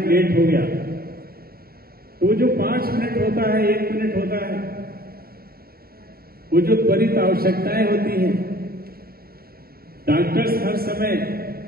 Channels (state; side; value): late; left; 0.44 ms